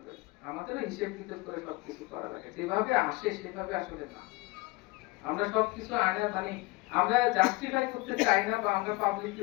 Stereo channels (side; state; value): right; quieter; 23.1 dB